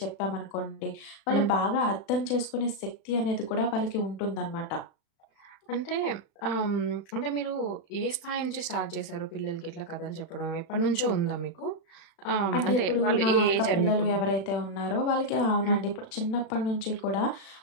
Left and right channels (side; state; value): right; late; 36 ms